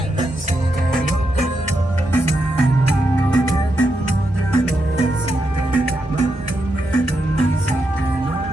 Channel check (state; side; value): normal; both; correlation 0.84